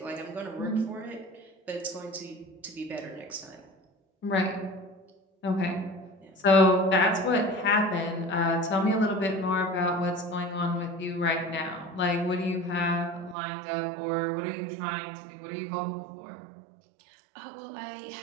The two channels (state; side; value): drops out; left; at 13.4 s